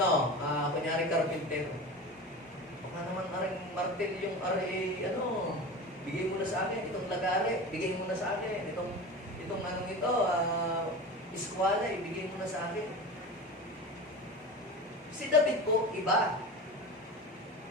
kunyari carpenter. Baka naman aring martel yung bigay mo na sa akin itong lagare, bigay mo na sa akin itong iskwala, ibigay mo na sa akin. Si David po, iba.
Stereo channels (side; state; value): both; normal; correlation 0.30